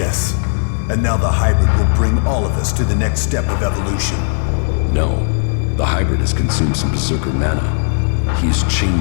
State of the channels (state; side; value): silent; right; digital silence